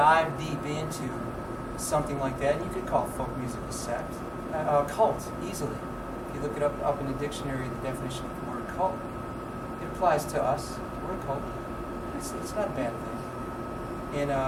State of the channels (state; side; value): identical; both; correlation 1.00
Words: deep into something like that. And you could call folk music a sect, a cult, easily. If you look it up in the dictionary, the definition of the word cult, it applies to us. We're a cult. It's not a bad thing. And